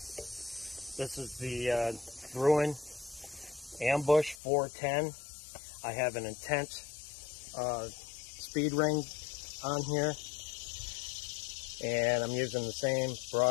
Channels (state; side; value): drops out; right; at 4.4 s